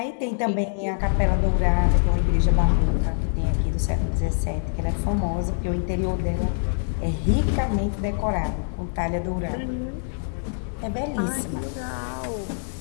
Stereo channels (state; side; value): silent; right; digital silence